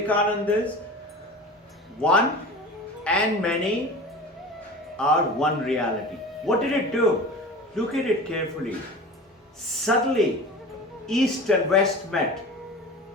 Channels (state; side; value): normal; both; correlation 0.35